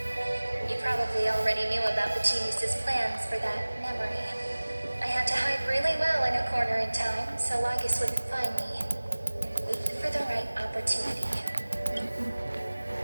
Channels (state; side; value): inverted; both; correlation -1.00